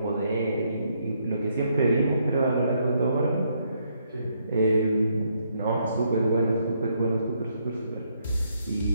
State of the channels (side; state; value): both; inverted; correlation -0.74